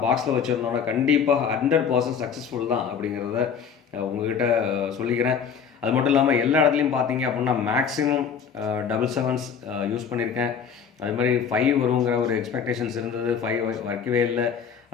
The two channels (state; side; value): quieter; right; 6.9 dB